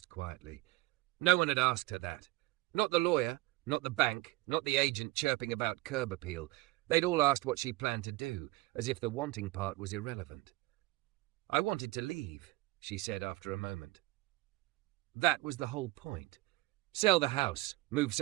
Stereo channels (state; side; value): quieter; left; 20.5 dB